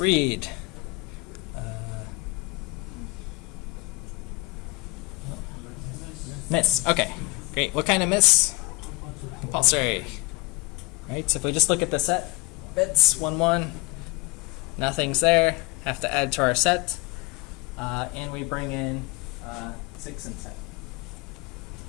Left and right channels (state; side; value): quieter; right; 22.5 dB